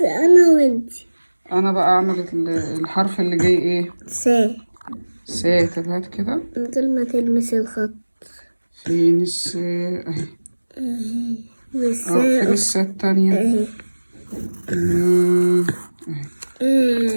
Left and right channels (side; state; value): both; inverted; correlation -1.00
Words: انا وانتي. انا بقى اعمل الحرف اللي جاي ايه؟ سا. طب هات كده. من غير ما تلمس الخط. فين السا؟ اهي. فين السا التانية؟ اهي. اهي.